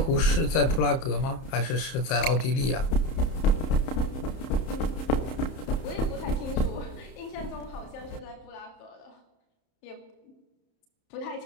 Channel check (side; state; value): right; late; 31 ms